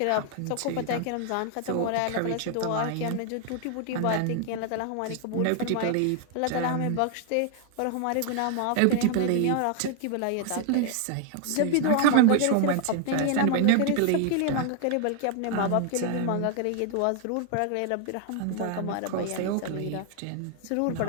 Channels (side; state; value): both; different; correlation 0.00